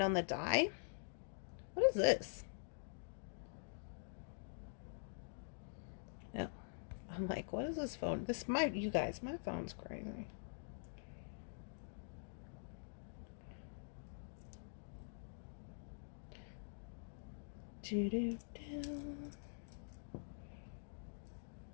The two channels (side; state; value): right; silent; digital silence